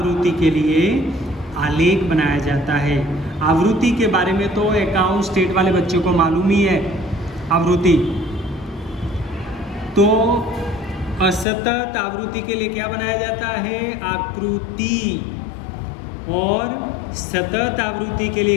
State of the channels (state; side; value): drops out; right; at 11.5 s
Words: के लिए आलेख बनाया जाता है। आवृत्ति के बारे में तो अकाउंट स्टेट वाले बच्चों को मालूम ही है। आवृत्ति तो असतत आवृत्ति के लिए क्या बनाया जाता है? आकृति। और सतत आवृत्ति के लिए